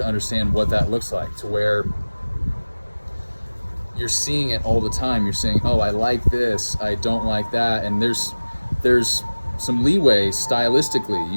understand what that looks like, to where you're seeing it all the time. You're saying, oh, I like this, I don't like that. And there's some leeway stylistically.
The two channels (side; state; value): both; inverted; correlation -1.00